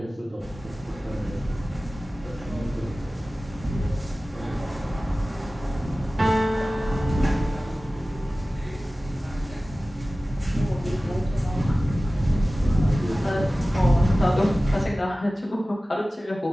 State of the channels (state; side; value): normal; both; correlation 0.97